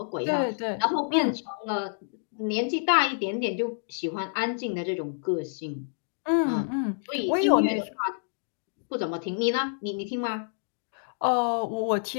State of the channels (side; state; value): right; silent; digital silence